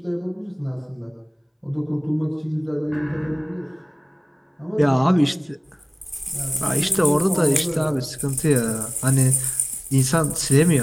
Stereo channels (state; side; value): identical; both; correlation 1.00